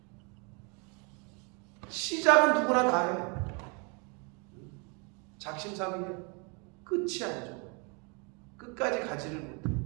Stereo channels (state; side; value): quieter; left; 33.6 dB